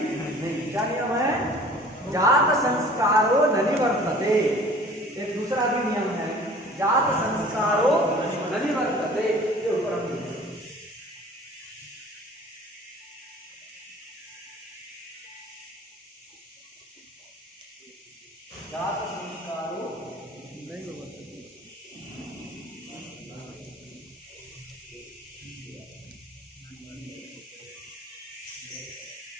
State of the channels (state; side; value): normal; both; correlation 0.48